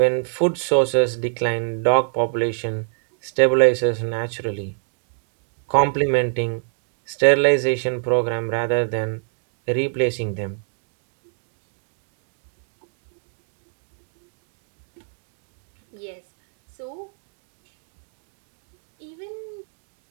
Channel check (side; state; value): left; silent; 62 dB below the other